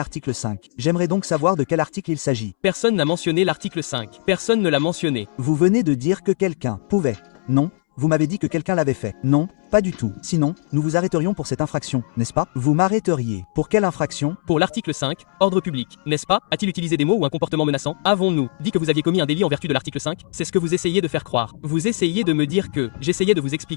5. J'aimerais donc savoir de quel article il s'agit. Personne n'a mentionné l'article 5. Personne ne l'a mentionné. Vous venez de dire que quelqu'un pouvait. Non, vous m'avez dit que quelqu'un l'avait fait. Non, pas du tout. Sinon, nous vous arrêterions pour cette infraction, n'est-ce pas? Vous m'arrêteriez. Pour quelle infraction? Pour l'article 5, ordre public, n'est-ce pas? A-t-il utilisé des mots ou un comportement menaçant? Avons-nous dit que vous aviez commis un délit en vertu de l'article 5? C'est ce que vous essayez de faire croire. Vous essayez de me dire que... J'essayais de vous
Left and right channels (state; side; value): silent; right; 65 dB below the other